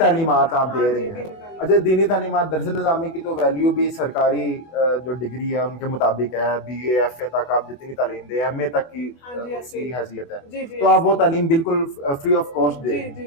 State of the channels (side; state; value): right; late; 24 ms